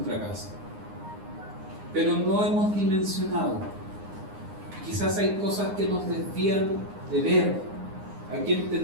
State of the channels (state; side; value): late; left; 9.7 ms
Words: casa, pero no hemos dimensionado. Quizás hay cosas que nos desvían de ver a quien